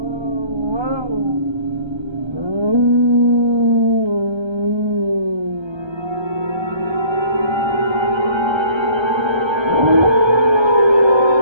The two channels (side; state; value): left; late; 1.3 ms